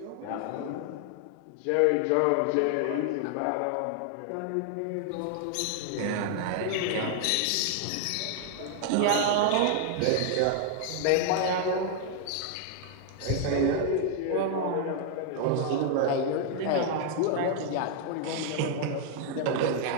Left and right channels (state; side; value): different; both; correlation 0.00